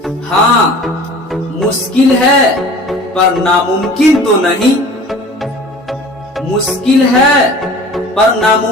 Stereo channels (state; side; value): normal; both; correlation 0.44